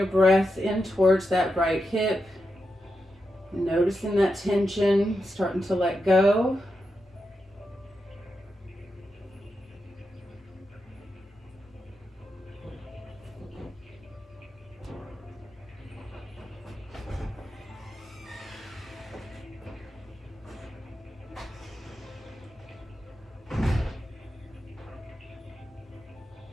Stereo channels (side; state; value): both; normal; correlation 0.87